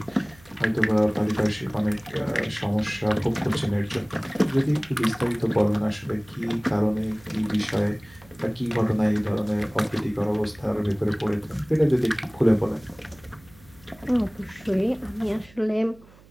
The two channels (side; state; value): right; noise; hum, 25 dB below the sound